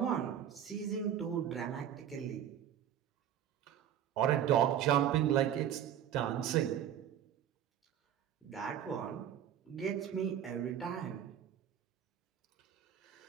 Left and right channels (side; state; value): left; quieter; 10.0 dB